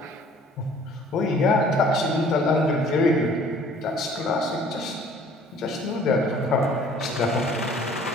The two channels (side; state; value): both; normal; correlation 0.54